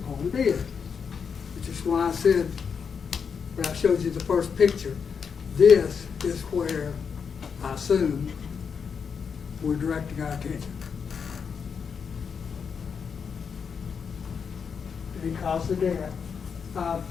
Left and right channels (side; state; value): right; quieter; 6.3 dB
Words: Parham did, which is why I said, when I showed you the first picture, this is where I assume we're directing our attention. He caused the death.